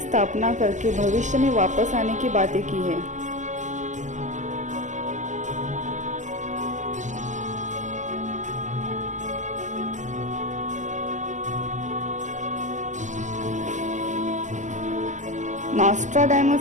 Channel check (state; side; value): late; left; 0.35 ms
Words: करके भविष्य में वापस आने की बातें की है।